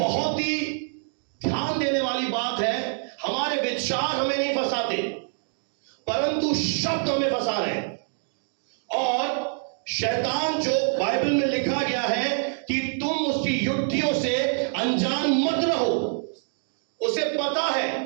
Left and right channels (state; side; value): silent; left; 57 dB below the other